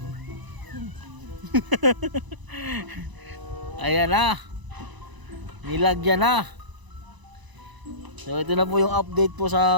Ayan na. Nilagyan na. So ito na po yung update po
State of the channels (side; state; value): left; late; 1.0 ms